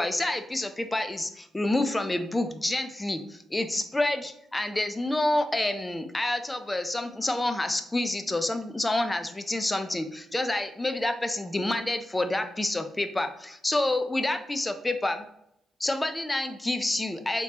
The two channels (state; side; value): normal; both; correlation 0.94